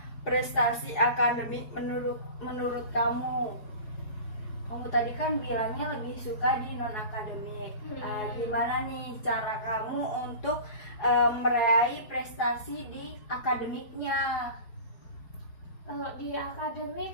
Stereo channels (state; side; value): late; right; 4.8 ms